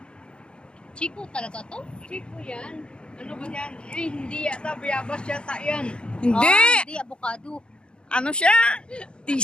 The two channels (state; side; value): late; right; 0.053 ms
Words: Chico talaga to? Chico yan. Ano ba yan? Eh, hindi yata. Bayabas yata yan. Hindi! Ah, hindi, avocado. Ano siya?